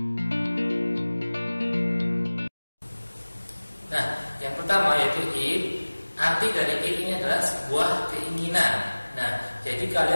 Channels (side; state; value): both; inverted; correlation -1.00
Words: Nah, yang pertama yaitu id. Arti dari id ini adalah sebuah keinginan. Nah, jadi